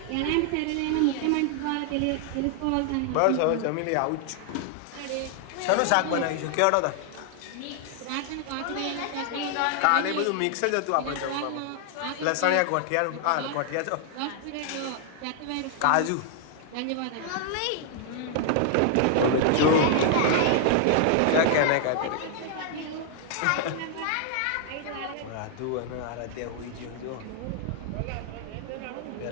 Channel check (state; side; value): different; both; correlation 0.00